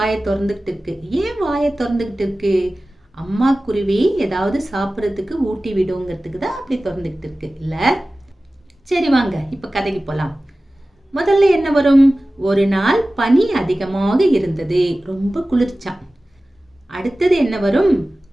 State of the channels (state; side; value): normal; both; correlation 0.96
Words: திறந்துகிட்டு இருக்கு. ஏன் வாயை திறந்துகிட்டு இருக்கு? அம்மா குருவி ஏதாவது சாப்பிட்றதுக்கு ஊட்டி விடுங்கிறதுக்கு தான் அப்படி திறந்துகிட்டு இருக்கு இல்ல? சரி வாங்க இப்ப கதைக்கு போலாம். முதல்ல என்ன வரும்? ஒரு நாள் பனி அதிகமாக இருந்தது. ரொம்ப குளிர்ச்சாம். அடுத்தது என்ன வரும்?